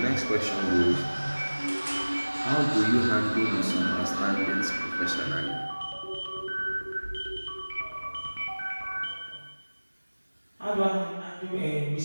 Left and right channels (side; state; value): both; inverted; correlation -1.00